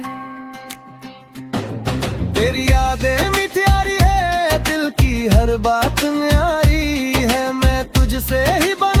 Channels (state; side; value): identical; both; correlation 1.00